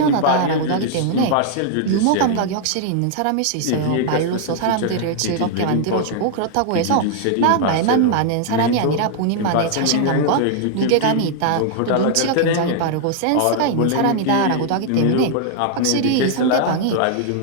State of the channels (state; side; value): different; both; correlation 0.00